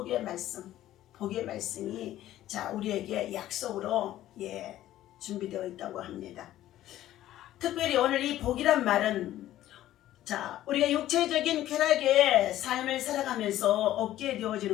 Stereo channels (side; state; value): right; quieter; 13.6 dB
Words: 말씀, 복의 말씀이 자 우리에게 약속으로 준비되어 있다고 합니다. 특별히 오늘 이 복이란 말은 자 우리가 육체적인 쾌락의 삶을 살아가면서 얻게